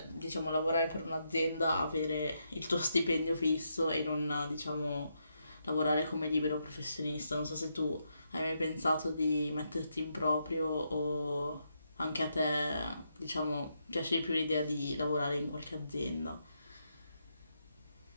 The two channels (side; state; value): both; inverted; correlation -0.81